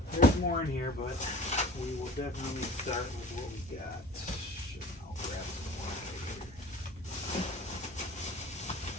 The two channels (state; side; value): normal; both; correlation 0.43